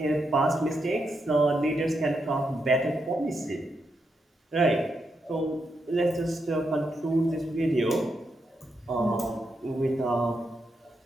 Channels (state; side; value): normal; both; correlation 0.83